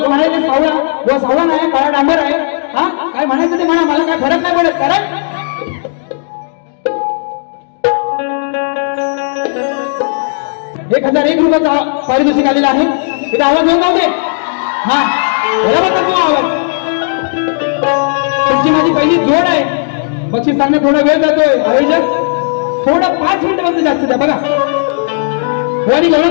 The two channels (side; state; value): right; silent; digital silence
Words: म्हणायचं सावळा हो सावळा नाही काळा डांबर आहे हा काय म्हणायचं ते म्हणा मला काय फरक नाही पडत कारण 1001 रुपयाचा पारितोषिक आलेला आहे इथं आवाज होत नव्हते हा बरोबर तो आवाज तुमची माझी पहिली जोड आहे बक्षीस सांगणं थोडा वेळ जातोय आयोजक थोडा 5 मिनिटांमध्ये जास्त द्या बघा गवळणी